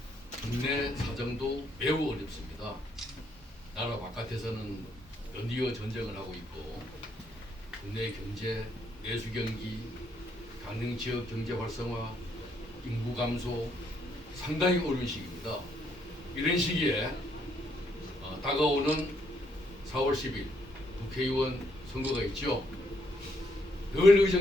국내 사정도 매우 어렵습니다. 나라 바깥에서는 연이어 전쟁을 하고 있고 국내 경제, 내수 경기, 강릉 지역 경제 활성화, 인구 감소 상당히 어려운 시기입니다. 이런 시기에 다가오는 4월 10일 국회의원 선거가 있죠. 늘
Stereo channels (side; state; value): both; normal; correlation 0.73